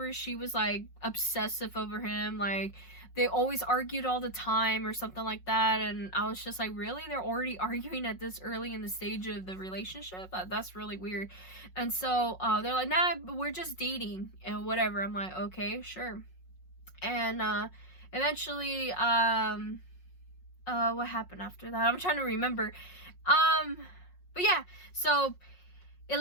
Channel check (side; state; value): right; late; 5.5 ms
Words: she was like obsessive over him. Like, they always argued all the time or something like that. And I was just like, really? They're already arguing at this early in the stage of the relationship? That's really weird. And so they're like, nah, we're just dating and whatever. I'm like, okay, sure. And eventually, what happened after that? I'm trying to remember. But yeah, so it